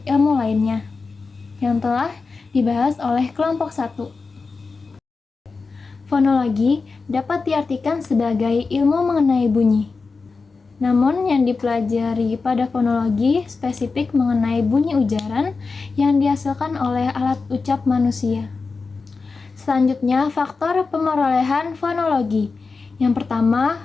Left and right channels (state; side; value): quieter; right; 4.4 dB